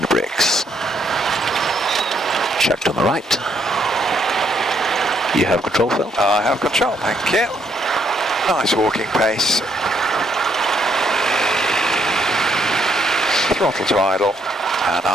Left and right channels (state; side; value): normal; both; correlation 0.72